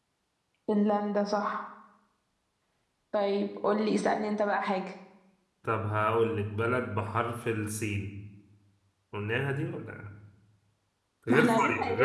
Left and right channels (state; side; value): identical; both; correlation 1.00